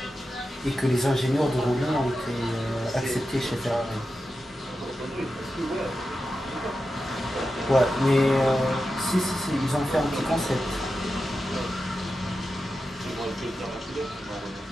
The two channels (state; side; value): normal; both; correlation 0.91